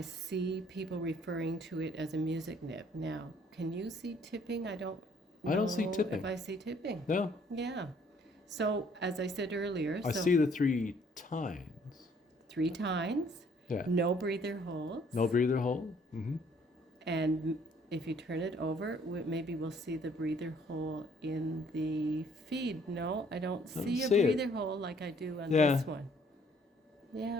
see people referring to it as a music nib. Now, can you see tipping? I don't see know tipping. if I see tipping. no. Yeah. So, as I said earlier, I see the 3 tines. 3 tines, Yeah. no breather holes. No breather hole. Mm-hmm. And if you turn it over, maybe we'll see the breather hole in the feed. No, I don't see a see it. breather hole like I do on Yeah. this one.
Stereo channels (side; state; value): both; normal; correlation 0.62